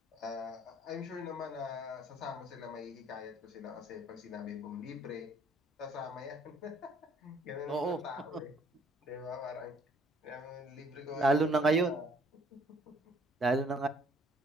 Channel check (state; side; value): normal; both; correlation 0.61